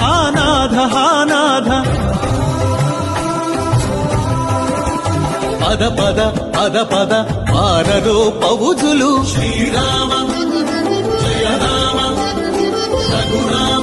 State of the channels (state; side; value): identical; both; correlation 1.00